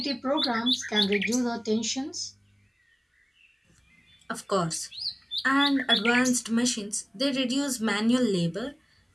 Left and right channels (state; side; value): identical; both; correlation 1.00